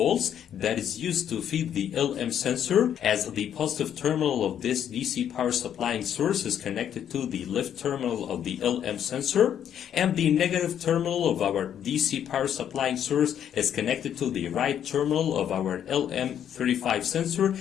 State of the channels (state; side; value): quieter; right; 9.5 dB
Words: that is used to feed the LM sensor, as the positive terminal of this DC power supplying source is connected to the left terminal of the LM sensor, and the negative terminal of our DC power supplying source is connected to the right terminal of our Lm35 sensor.